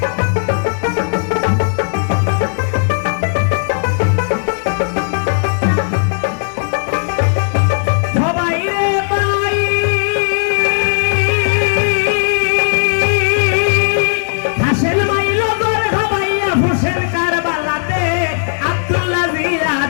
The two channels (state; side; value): silent; right; digital silence